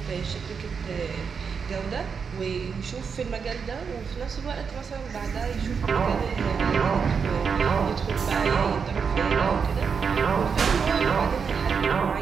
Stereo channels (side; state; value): left; quieter; 6.0 dB